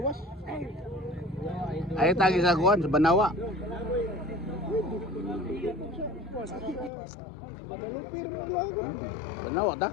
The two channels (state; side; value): drops out; right; at 6.9 s